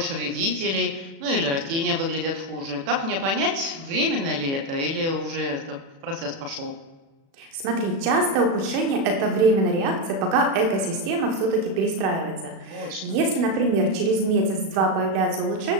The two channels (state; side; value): late; left; 36 ms